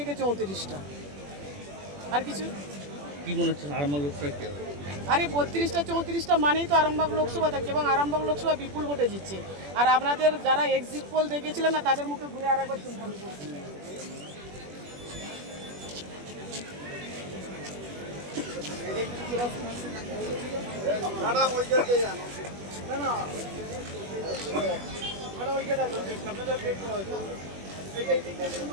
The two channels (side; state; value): left; late; 21 ms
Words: 34টা। আর কিছু কি মনে হচ্ছে আরামবাগ লোকসভা কি হবে? আরে 32টা 34টা মানেই তো আরামবাগ লোকসভা থাকছে এবং আরামবাগ লোকসভা বিপুল ভোটে জিতছে। আর আপনাদের যারা এক্সিট পোল দেখেছিলেন না তাদের মুখে ঘুরে আরেকবার শুনলাম।